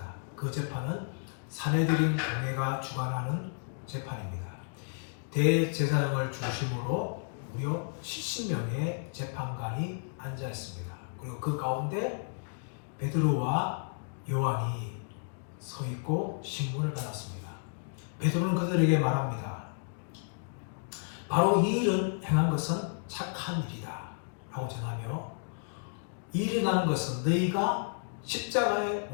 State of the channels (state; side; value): silent; right; digital silence